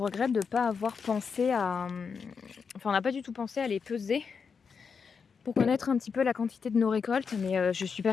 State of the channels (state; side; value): quieter; right; 5.8 dB